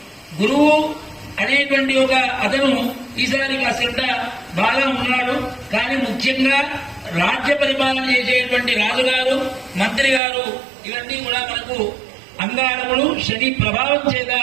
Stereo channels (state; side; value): drops out; left; at 10.2 s